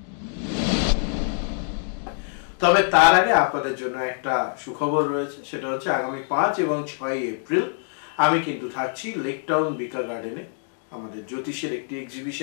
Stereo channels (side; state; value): right; silent; digital silence